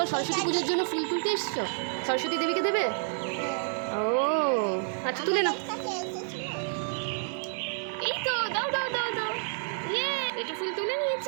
সরস্বতী পুজোর জন্য ফুল তুলতে এসছো? সরস্বতী দেবীকে দেবে? ও আচ্ছা, তুলে নাও। এই তো, দাও দাও দাও দাও। ইয়ে, একটু ফুল তুলে নিয়েছি।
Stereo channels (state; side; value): silent; left; digital silence